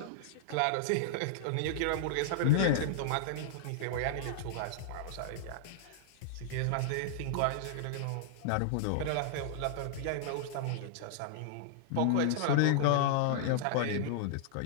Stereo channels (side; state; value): both; different; correlation -0.01